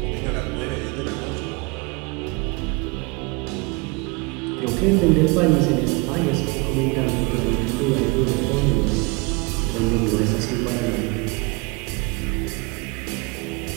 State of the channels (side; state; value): left; quieter; 27.5 dB